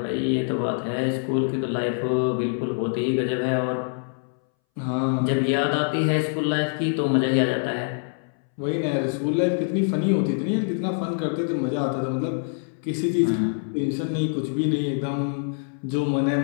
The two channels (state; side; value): silent; right; 61 dB below the other